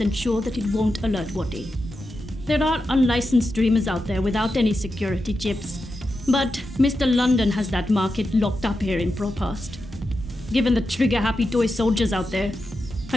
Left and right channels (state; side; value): normal; both; correlation 0.89